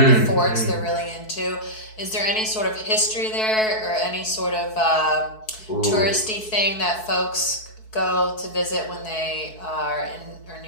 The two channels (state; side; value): late; right; 4.6 ms